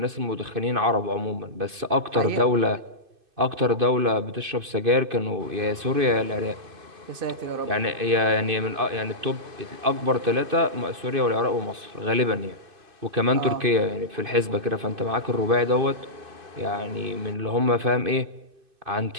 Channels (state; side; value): late; left; 2.5 ms